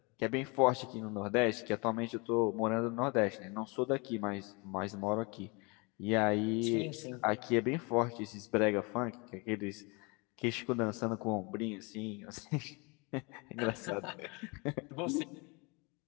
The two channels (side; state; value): right; quieter; 29.4 dB